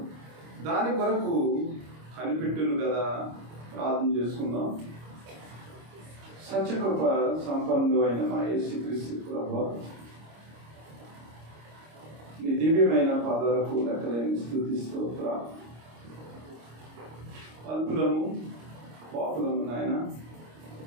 దాని కొరకు కనిపెట్టును కదా. ప్రార్థన చేసుకుందాం. సత్యకృప సంపన్నుడు అయిన మా యేసుక్రీస్తు ప్రభువా, నీ దివ్యమైన పాదాలకు లెక్కలేని స్తుతి స్తోత్రాలు. అల్పులము పాపులము నాయన,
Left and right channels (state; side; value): late; left; 26 ms